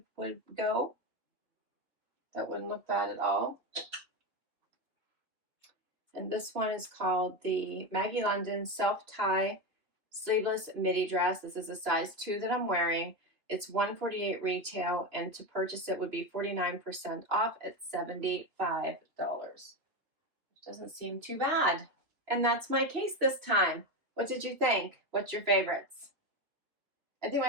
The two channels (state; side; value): late; left; 2.8 ms